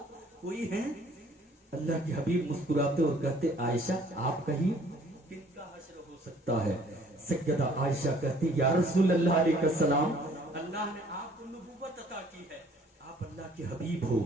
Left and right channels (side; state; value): both; normal; correlation 0.57